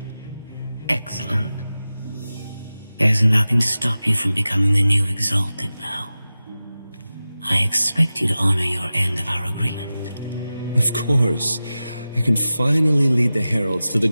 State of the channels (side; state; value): both; inverted; correlation -0.95